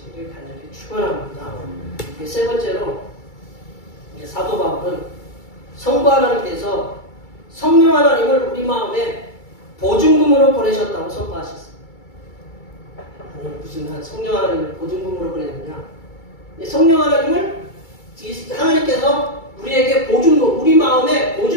간절히 축원합니다. 세 번째로 사도 바울은 성부 하나님께서 성령 하나님을 우리 마음에 보증금으로 보내셨다고 선포하셨습니다. 아니, 무슨 성령 하나님을 보증금으로 보냈느냐? 성령 하나님을 하나님께서 우리에게 보증금, 우리 마음에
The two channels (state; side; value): late; right; 2.3 ms